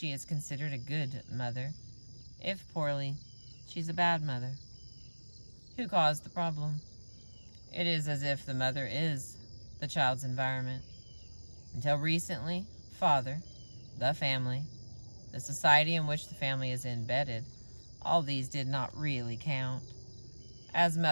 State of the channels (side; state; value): both; inverted; correlation -1.00